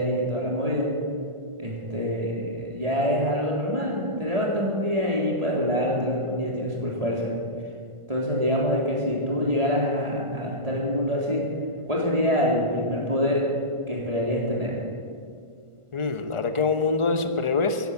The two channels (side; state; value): left; late; 1.5 ms